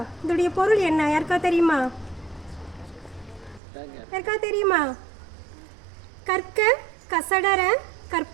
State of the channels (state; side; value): drops out; left; at 3.6 s